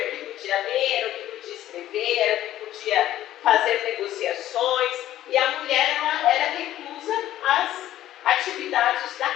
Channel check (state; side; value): quieter; right; 13.2 dB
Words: o que podia ler, era o que podia escrever, era o que podia fazer negociações, e a mulher era reclusa às atividades da